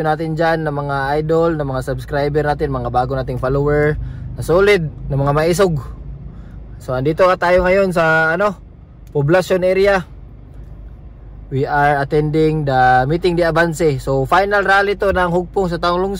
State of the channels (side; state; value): both; identical; correlation 1.00